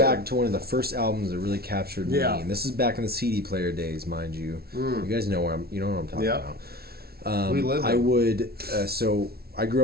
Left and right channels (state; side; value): late; left; 0.45 ms